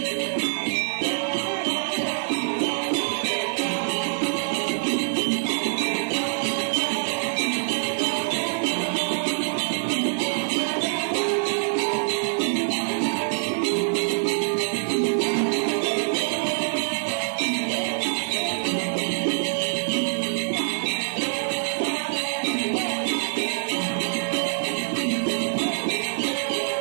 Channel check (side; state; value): left; silent; 62 dB below the other